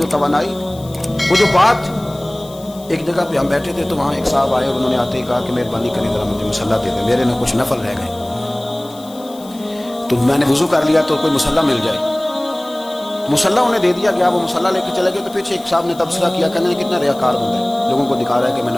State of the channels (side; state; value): left; noise; hiss, 22 dB below the sound